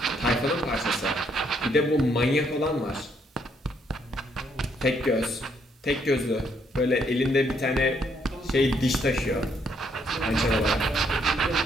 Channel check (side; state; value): both; normal; correlation 0.71